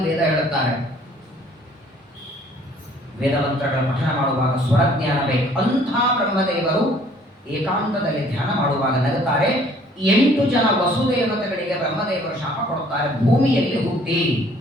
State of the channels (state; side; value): normal; both; correlation 0.58